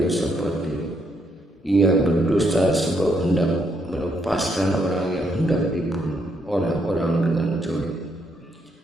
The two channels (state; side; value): normal; both; correlation 0.75